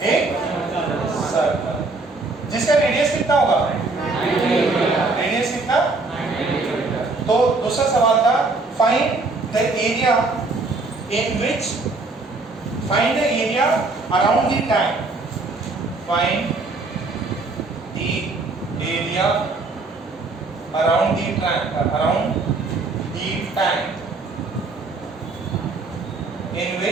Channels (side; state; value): left; quieter; 3.5 dB